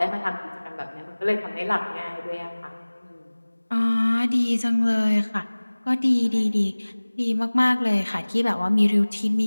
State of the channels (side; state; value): both; inverted; correlation -1.00